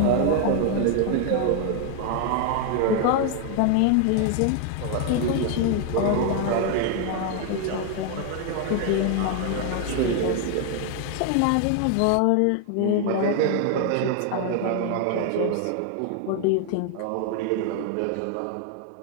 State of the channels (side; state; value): both; different; correlation 0.00